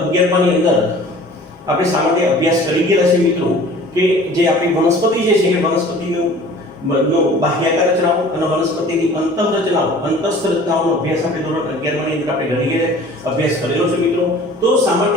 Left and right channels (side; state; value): both; normal; correlation 0.47